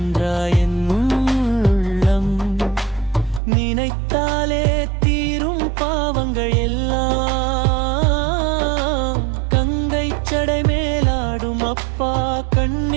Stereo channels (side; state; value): left; drops out; at 3.4 s